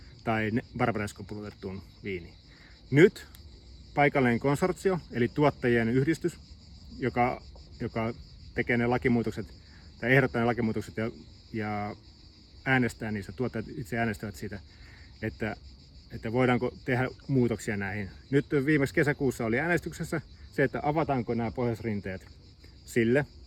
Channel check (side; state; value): both; identical; correlation 1.00